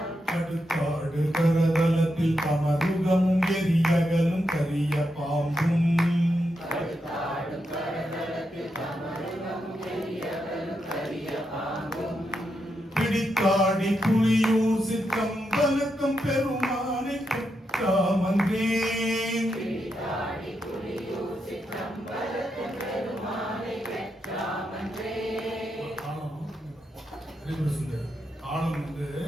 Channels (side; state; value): both; normal; correlation 0.84